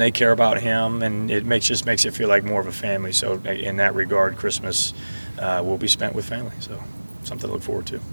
they care about him, and it just makes it feel like more of a family. So in that regard, Christmas will be spent with family. So something to look forward to.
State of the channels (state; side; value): inverted; both; correlation -1.00